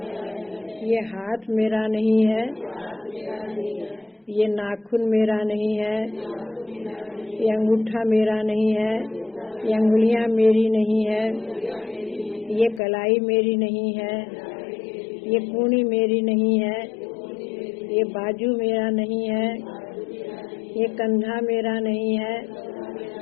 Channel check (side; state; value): right; drops out; at 12.8 s